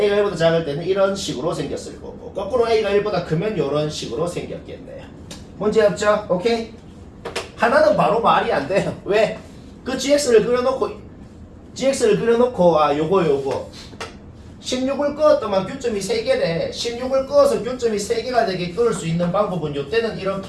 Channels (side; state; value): both; identical; correlation 1.00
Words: 1보다 작을 때는 이런 식으로 생겼을 거고 거꾸로 A가 1보다 크면 이런 식으로 생겼겠네요. 문제 없죠? 오케이? 하나는 바로 말이 안 돼요. 왜? 그 gx를 그려놓고 GX를 그려놓고 요거 16을 그었더만 교점이 3개래. 16을 그어서 교점이 3개가 되게 그을 수 있는 방법은 요때는